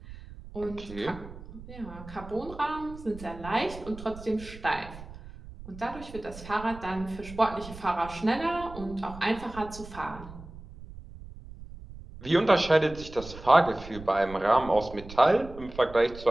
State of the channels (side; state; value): right; noise; rumble, 15 dB below the sound